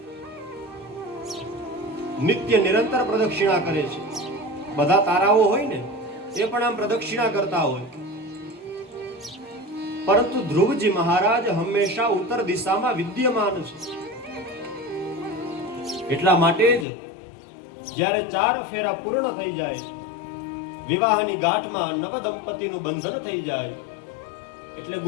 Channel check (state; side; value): drops out; right; at 16.9 s